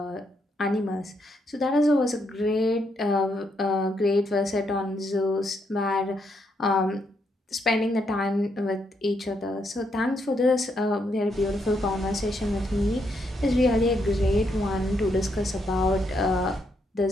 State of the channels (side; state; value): both; normal; correlation 0.77